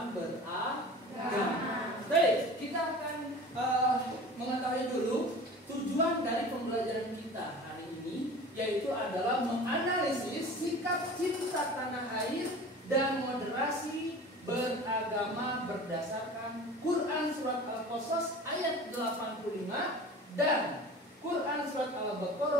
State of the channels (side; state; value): both; normal; correlation 0.39